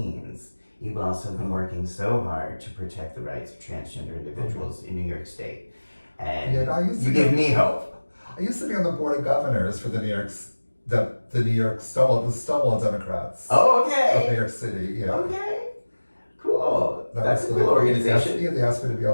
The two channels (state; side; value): inverted; both; correlation -1.00